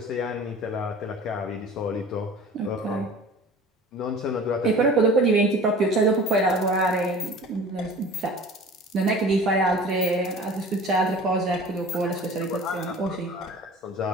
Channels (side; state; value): both; normal; correlation 0.42